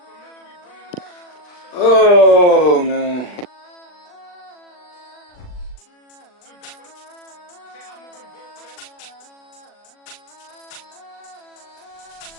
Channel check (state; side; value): late; right; 40 ms